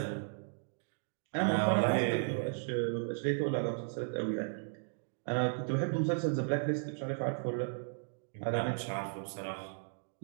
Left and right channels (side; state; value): left; silent; digital silence